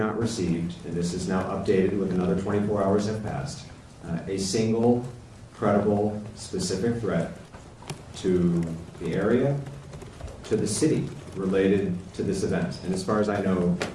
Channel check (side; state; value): both; identical; correlation 1.00